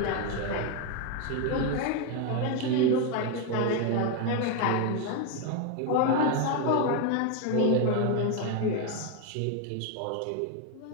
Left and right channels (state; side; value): different; both; correlation 0.01